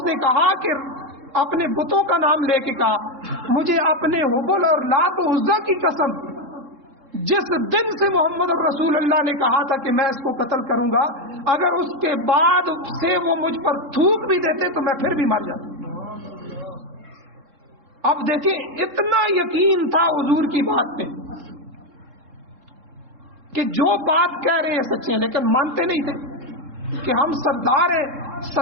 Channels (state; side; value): late; left; 3.7 ms